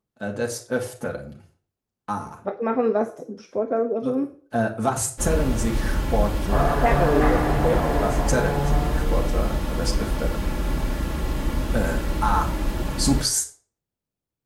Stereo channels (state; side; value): identical; both; correlation 1.00